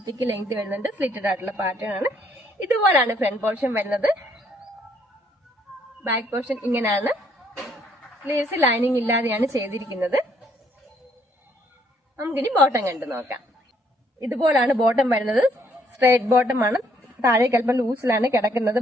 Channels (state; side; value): normal; both; correlation 0.68